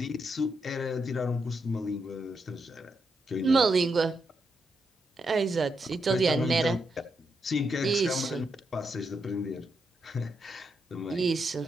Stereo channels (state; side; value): normal; both; correlation 0.82